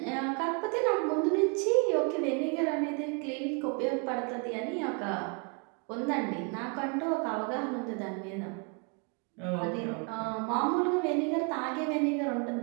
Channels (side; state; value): left; quieter; 34.9 dB